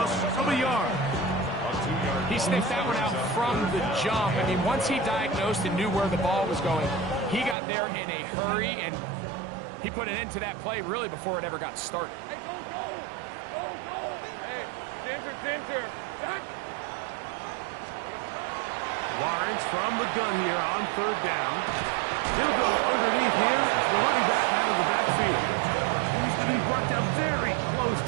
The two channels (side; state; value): left; drops out; at 7.6 s